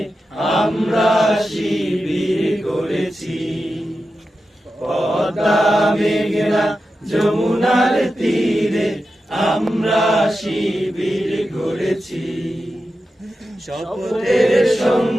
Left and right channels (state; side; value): normal; both; correlation 0.91